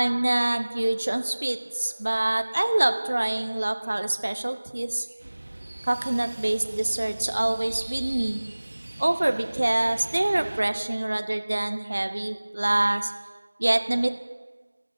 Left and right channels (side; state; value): both; inverted; correlation -1.00